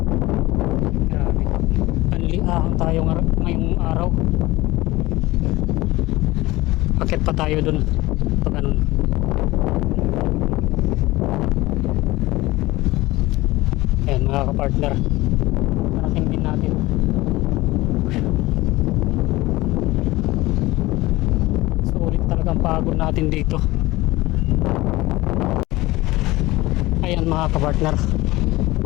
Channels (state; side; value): quieter; right; 19.3 dB